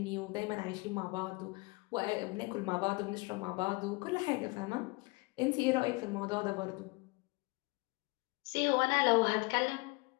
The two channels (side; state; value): right; quieter; 25.9 dB